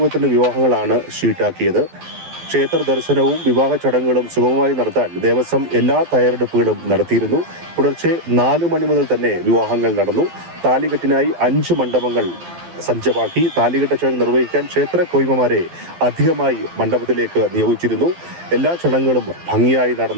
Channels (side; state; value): left; late; 12 ms